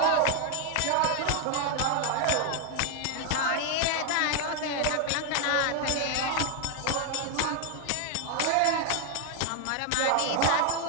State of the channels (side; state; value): both; different; correlation 0.00